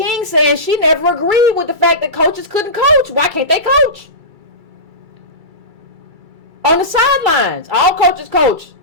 saying she never agreed with the fact that coaches couldn't coach. Why can't they coach? On the sidelines, all coaches coach,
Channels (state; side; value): late; left; 2.3 ms